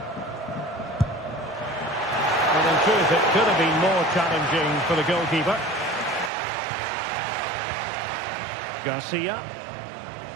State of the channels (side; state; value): left; drops out; at 6.3 s